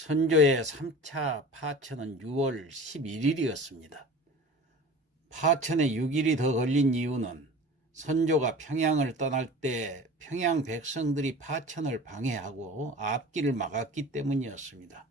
3차 파천은 6월 11일이었습니다. 파천에 6일이 더 걸린 이유는 선조가 평양을 떠날 때 평양 백성들이 파천을 방해하고 앞길을 막았기 때문이었습니다.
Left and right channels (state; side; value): normal; both; correlation 0.39